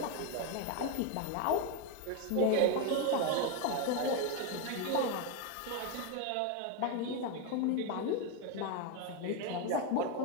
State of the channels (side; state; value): both; different; correlation 0.02